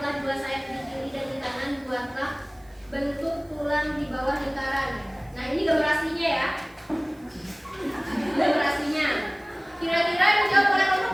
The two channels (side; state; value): right; noise; hiss, 30 dB below the sound